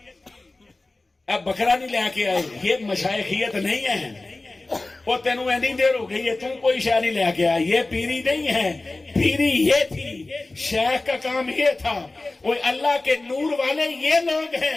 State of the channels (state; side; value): quieter; right; 3.1 dB